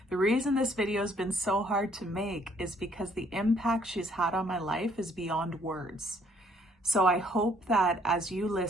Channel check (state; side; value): normal; both; correlation 0.64